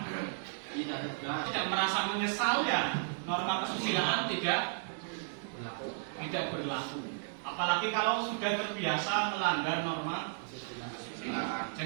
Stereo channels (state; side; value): silent; left; digital silence